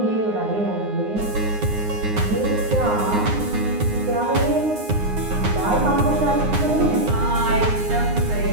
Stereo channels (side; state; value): left; late; 9.6 ms